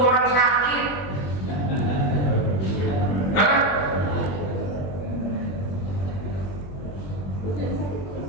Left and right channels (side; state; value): right; late; 21 ms